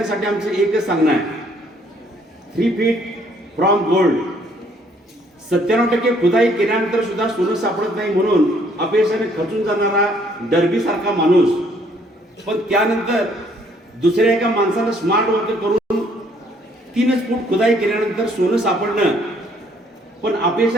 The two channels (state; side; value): normal; both; correlation 0.64